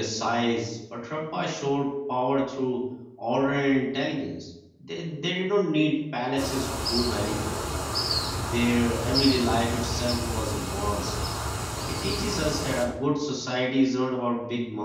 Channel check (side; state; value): both; identical; correlation 1.00